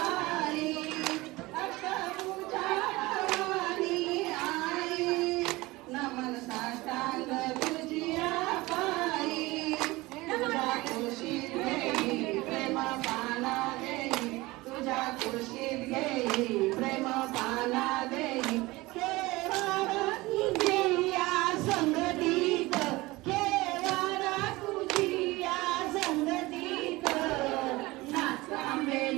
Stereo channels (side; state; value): left; quieter; 20.9 dB